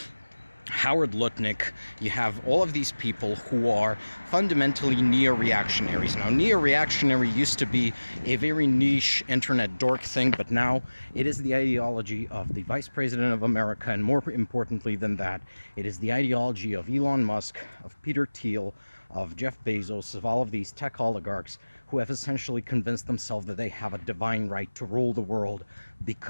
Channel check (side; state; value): both; inverted; correlation -1.00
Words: Howard Lutnick, you have all of these people who are fundamentally neo-reactionaries. Now, neo-reactionary used to be a very niche internet dork thing, but now it is the ideology of the Vice President of America, and more importantly than that, it is the ideology of Elon Musk, of Peter Thiel, of Jeff Bezos, of all of these tech oligarchs who have essentially convinced themselves that they have a divine right to rule the world